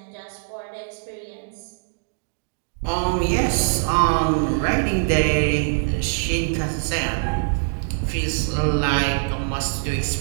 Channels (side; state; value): left; silent; digital silence